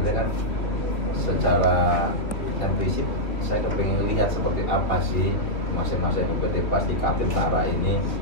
kan secara prinsip saya kepengen lihat seperti apa sih masing-masing UPT Pas di Kaltim Utara ini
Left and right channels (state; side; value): late; right; 3.1 ms